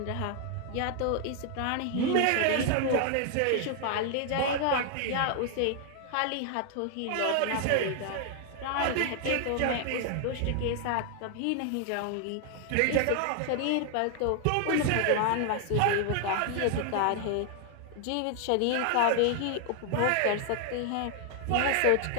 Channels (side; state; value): both; different; correlation 0.00